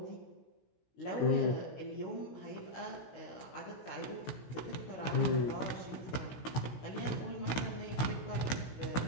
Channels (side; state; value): right; late; 16 ms